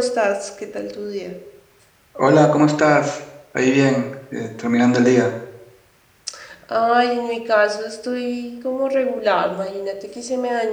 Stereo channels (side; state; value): both; identical; correlation 1.00